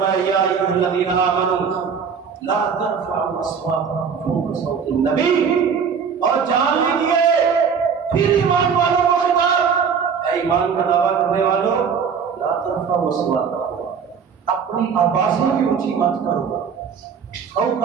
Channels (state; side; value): quieter; left; 6.5 dB